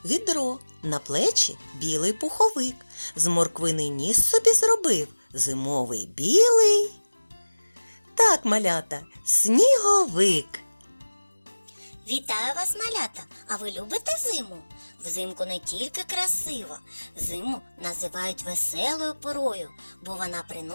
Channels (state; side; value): inverted; both; correlation -1.00